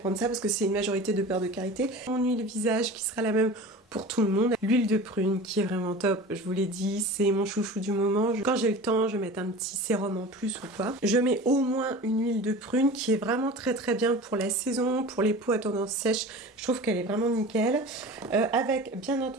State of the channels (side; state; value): both; normal; correlation 0.36